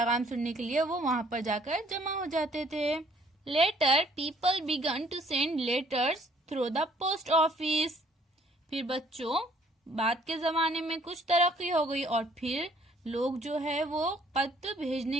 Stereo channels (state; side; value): normal; both; correlation 0.62